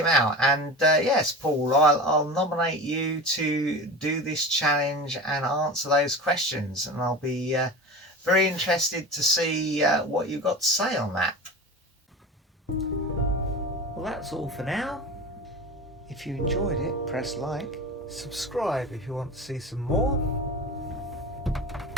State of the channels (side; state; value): both; normal; correlation 0.31